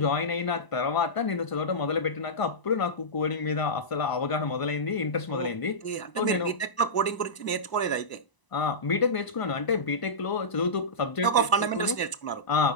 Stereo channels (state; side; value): late; right; 1.0 ms